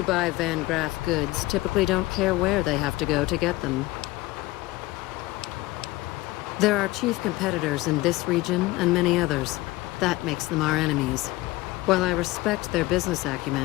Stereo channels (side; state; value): right; quieter; 19.4 dB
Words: buy Van Graff goods typically don't care where they have to go to get them. There are chief competitors in this region and many others. That makes them our enemies. While I respect their business